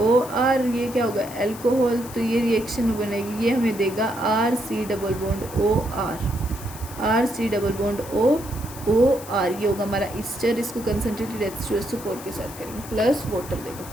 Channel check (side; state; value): left; noise; hiss, 15 dB below the sound